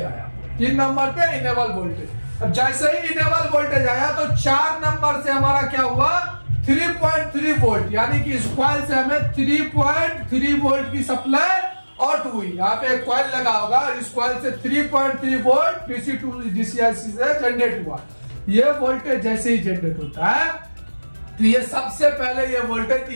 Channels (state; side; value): inverted; both; correlation -1.00